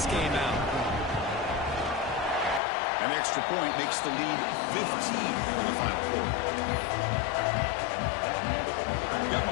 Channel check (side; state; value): right; drops out; at 2.6 s